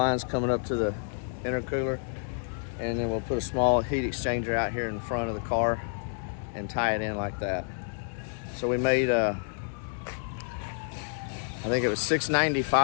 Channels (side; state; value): right; silent; digital silence